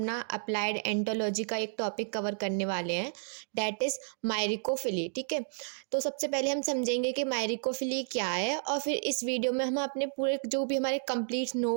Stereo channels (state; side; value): silent; left; digital silence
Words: अप्लाइड एंटोलॉजी का एक टॉपिक कवर करने वाले हैं, डैट इज़ मायरिकोफिली। ठीक है, तो सबसे पहले हम समझेंगे कि मायरिकोफिली क्या है, और फिर इस वीडियो में हम अपने पूरे जो भी हमारे कंप्लीट